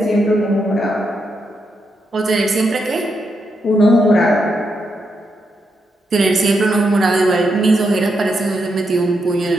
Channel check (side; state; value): both; normal; correlation 0.82